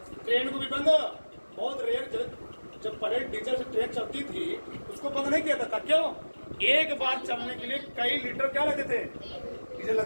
ट्रेन को भी बंद बहुत रेयर, जब पहले डीजल से ट्रेन चलती थी उसको बंद नहीं किया था। क्यों? एक बार चलने के लिए कई लीटर क्या लगते थे? डीजल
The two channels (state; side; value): inverted; both; correlation -1.00